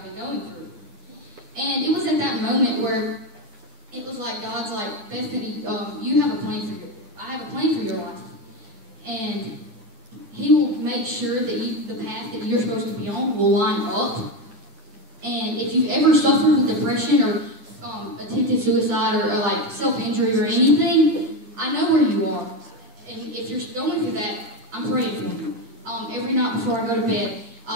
been going through. And it was at that moment where it was like God's like, Bethany, you have a plan for I have a plan for your life. And He will make sure that the path that you're supposed to be on will line up. And if you've ever suffered with depression or attempted suicide or like self-injury or anything, I know where you are. And if you're going through that, I'm praying for you. Every night before I go to bed,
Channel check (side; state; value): left; late; 9.7 ms